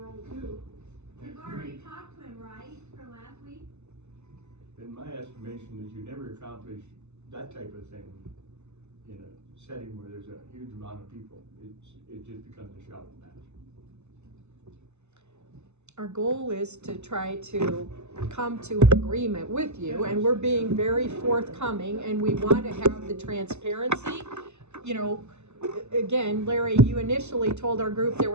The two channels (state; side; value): late; left; 0.82 ms